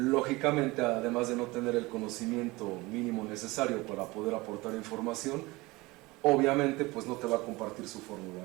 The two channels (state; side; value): quieter; left; 22.1 dB